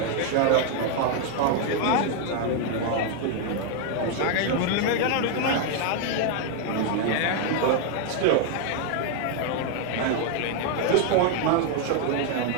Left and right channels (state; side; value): different; both; correlation 0.01